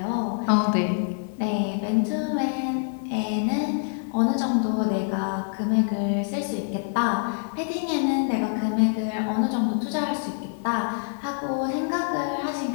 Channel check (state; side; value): silent; right; 61 dB below the other